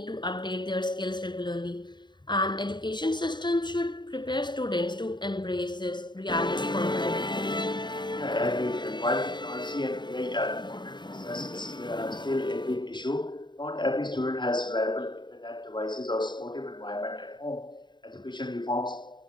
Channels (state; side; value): late; right; 0.22 ms